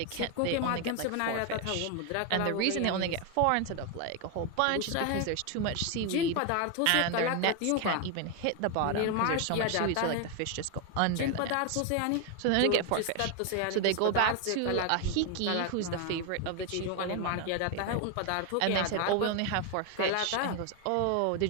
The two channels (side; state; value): both; different; correlation 0.01